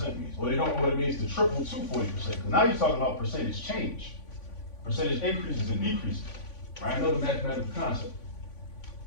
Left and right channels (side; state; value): right; late; 3.5 ms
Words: means, or they don't know what it means to triple to 40%. Because now you're talking about percentage change, percentage increases and decreases, right? Another mathematical concept.